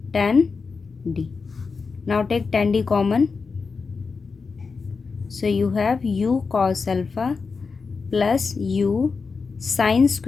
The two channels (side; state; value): right; quieter; 4.8 dB